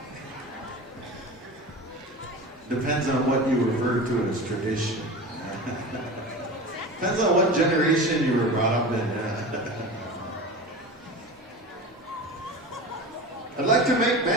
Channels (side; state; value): both; normal; correlation 0.31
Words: Depends on what you refer to as tradition. Depends on what generation you were brought up in. I'd like to make